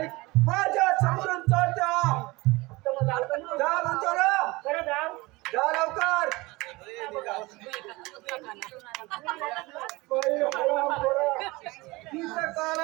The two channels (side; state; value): left; quieter; 22.5 dB